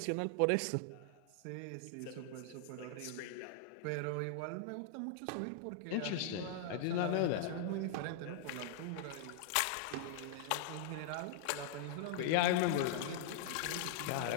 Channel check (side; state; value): both; different; correlation -0.01